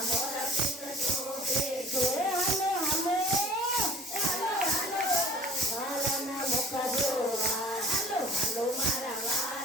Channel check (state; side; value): normal; both; correlation 0.49